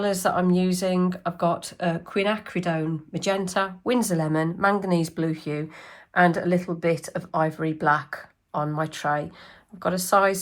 that I'm using, I've got quinacridone magenta, Winsor lemon, manganese blue hue, and a little bit of ivory black on my tray. I've got a size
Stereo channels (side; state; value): both; identical; correlation 1.00